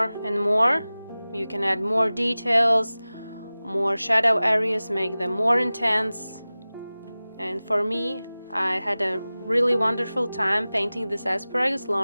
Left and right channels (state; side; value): inverted; both; correlation -0.98